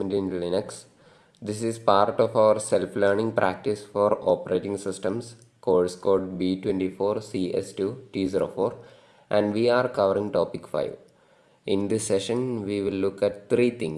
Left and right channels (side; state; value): both; identical; correlation 1.00